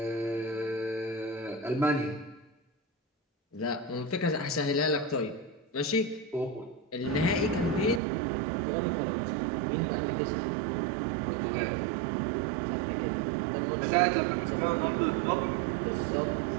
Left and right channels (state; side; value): drops out; left; at 8.0 s